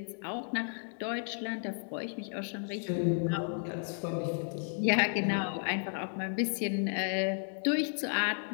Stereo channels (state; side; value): silent; right; 56 dB below the other